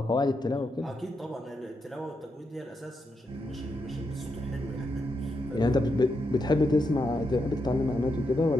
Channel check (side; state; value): both; normal; correlation 0.83